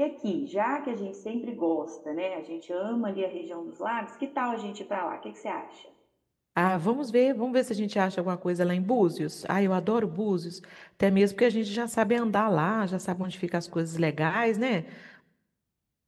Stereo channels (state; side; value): identical; both; correlation 1.00